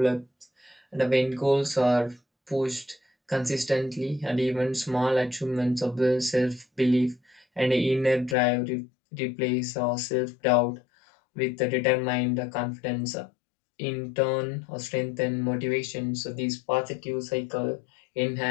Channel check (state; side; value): drops out; right; at 8.3 s